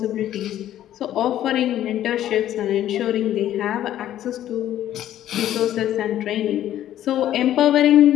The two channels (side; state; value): right; quieter; 12.1 dB